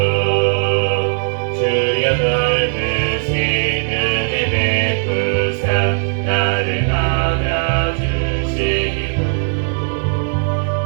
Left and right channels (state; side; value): silent; left; 68 dB below the other